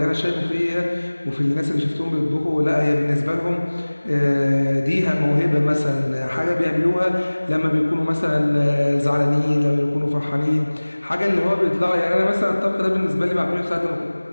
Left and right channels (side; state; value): both; inverted; correlation -1.00